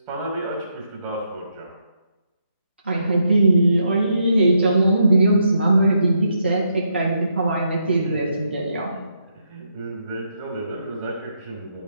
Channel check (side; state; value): both; inverted; correlation -0.79